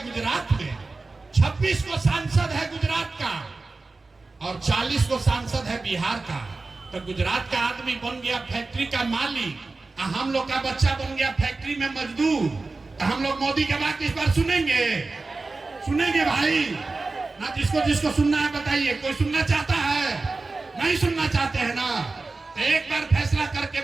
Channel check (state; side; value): quieter; left; 3.6 dB